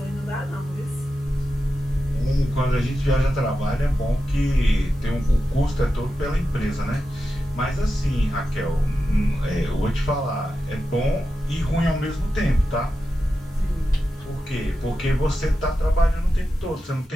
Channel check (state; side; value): normal; both; correlation 0.90